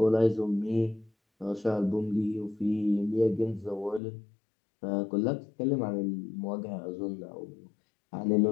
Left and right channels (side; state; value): right; drops out; at 4.0 s